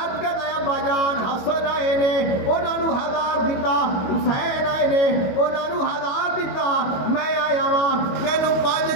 عرض کرتا ہے ابا جان حسن آئے نے انہاں نو 1000 دیتا, حسین آئے نے انہاں نو 1000 دیتا, میں آیا ہاں مینوں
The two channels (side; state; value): right; late; 22 ms